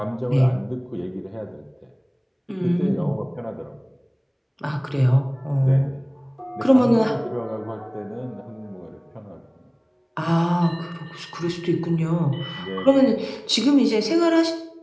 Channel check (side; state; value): both; identical; correlation 1.00